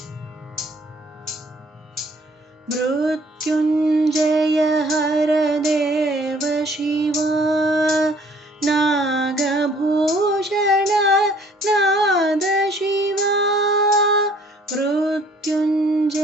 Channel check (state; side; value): normal; both; correlation 0.58